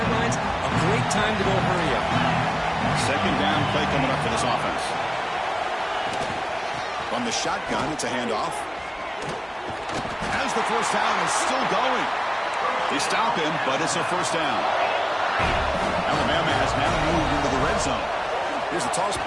A great time to go hurry up. 2nd down play coming up for this offense. From the shotgun, it's a handoff. As the 1st down is still going. They stop him, but it's a 1st down. Alabama has now moved into the red zone. Here's the toss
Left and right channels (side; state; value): both; identical; correlation 1.00